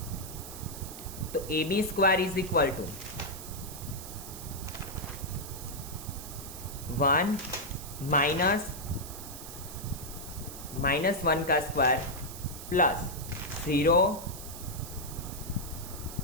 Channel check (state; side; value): noise; right; hiss, 11 dB below the sound